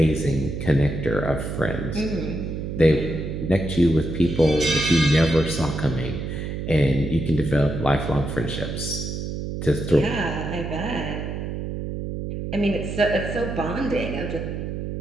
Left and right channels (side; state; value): right; noise; hum, 5 dB below the sound